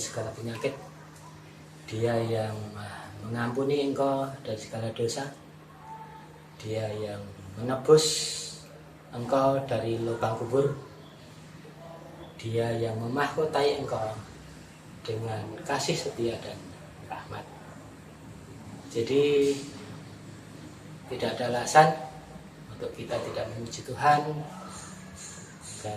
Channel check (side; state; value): both; identical; correlation 1.00